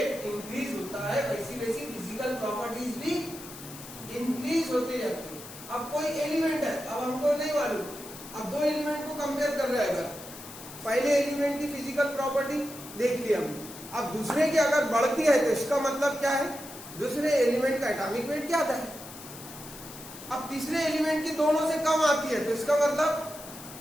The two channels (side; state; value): left; noise; hiss, 14 dB below the sound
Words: इंक्रीज होता है वैसी वैसी फिजिकल प्रॉपर्टीज भी इंक्रीज होती जाती है। अब कोई एलिमेंट है, अब हमको नहीं मालूम, अब दो एलिमेंट को कंपेयर कर रहे हैं, पहले एलिमेंट की फिजिकल प्रॉपर्टी देख लिया हमने, अब दूसरे की अगर बढ़ती है तो इसका मतलब क्या है, दूसरे एलिमेंट का एटॉमिक वेट क्या आता है। अब तीसरे एलिमेंट की दोनों से कम आती है तो इसका